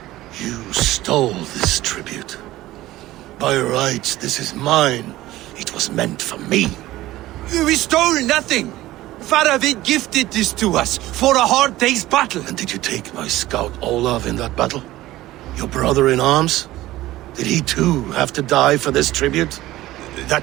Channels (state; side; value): quieter; left; 16.4 dB